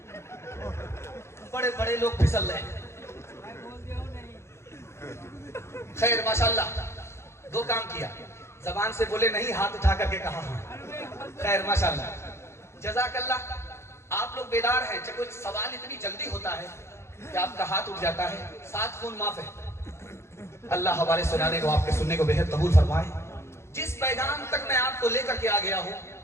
बड़े बड़े लोग फिसल रहे हैं। खैर माशाअल्लाह, 2 काम किया, जबान से बोले नहीं, हाथ उठा करके कहा हाँ। खैर माशाअल्लाह, जज़ाकल्लाह। आप लोग बेदार हैं, कुछ सवाल इतनी जल्दी होता है कि आपका हाथ उठ जाता है, 7 खून माफ है। अल्लाह हवाले सुनाने को, आपके सुनने को बेहद कबूल फरमाए। जिस पैगाम तक मैं आपको लेकर के आ गया हूं,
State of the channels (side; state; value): right; late; 0.13 ms